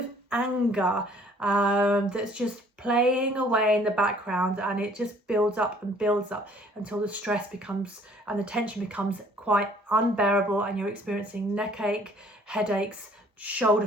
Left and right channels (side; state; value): both; normal; correlation 0.57